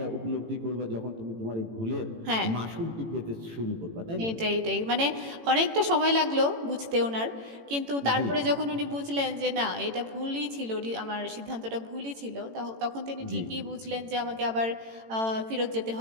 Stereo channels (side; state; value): left; late; 18 ms